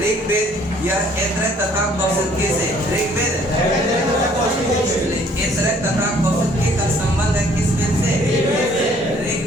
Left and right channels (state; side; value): normal; both; correlation 0.59